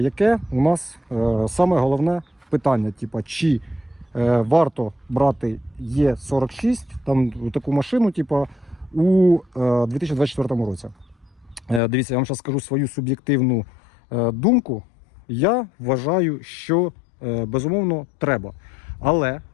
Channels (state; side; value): drops out; right; at 11.8 s